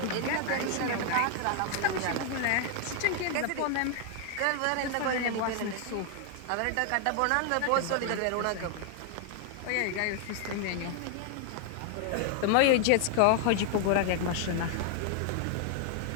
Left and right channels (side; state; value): both; different; correlation 0.00